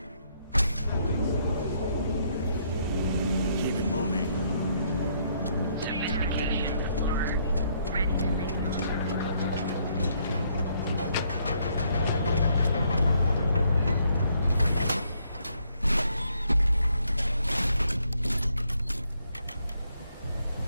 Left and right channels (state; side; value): inverted; both; correlation -0.71